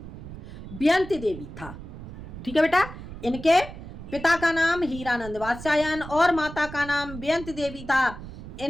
बेयंती देवी था। ठीक है बेटा, इनके पिता का नाम हीरानंद वात्स्यायन और माता का नाम बेयंती देवी था।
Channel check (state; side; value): noise; right; rumble, 12 dB below the sound